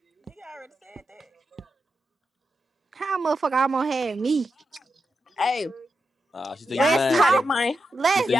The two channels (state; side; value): normal; both; correlation 0.87